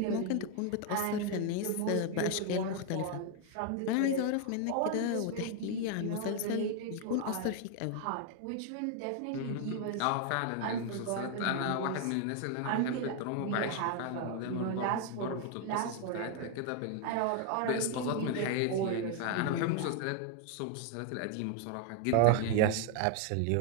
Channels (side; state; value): both; different; correlation 0.00